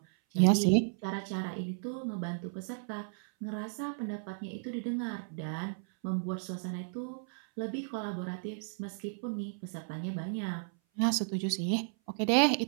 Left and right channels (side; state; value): left; silent; 55 dB below the other